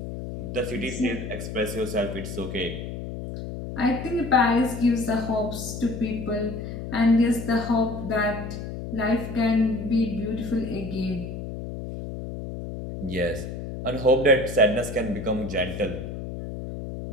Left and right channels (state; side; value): noise; left; hum, 7 dB below the sound